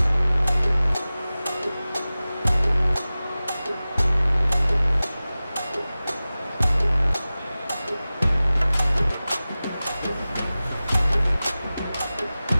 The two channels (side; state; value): both; inverted; correlation -0.97